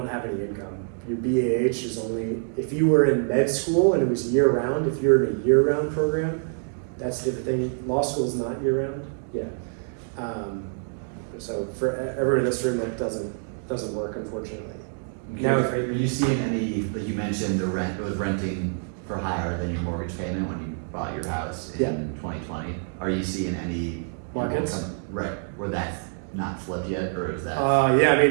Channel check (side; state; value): left; silent; 61 dB below the other